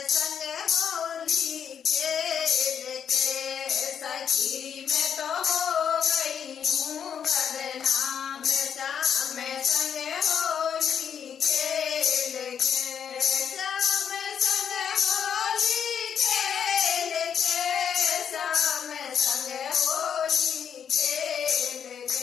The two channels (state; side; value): quieter; right; 8.0 dB